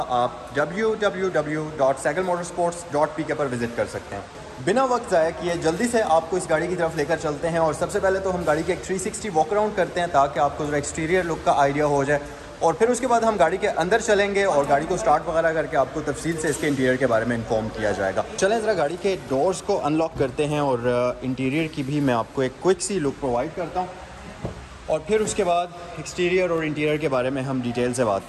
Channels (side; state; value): both; identical; correlation 1.00